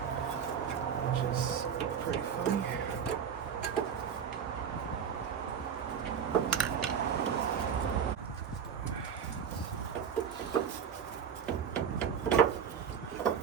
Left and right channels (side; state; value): left; quieter; 7.7 dB